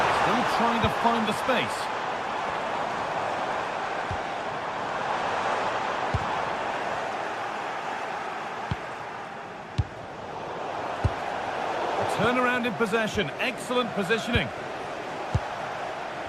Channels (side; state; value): both; identical; correlation 1.00